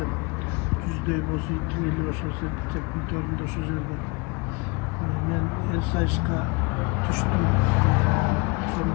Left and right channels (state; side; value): quieter; right; 28.7 dB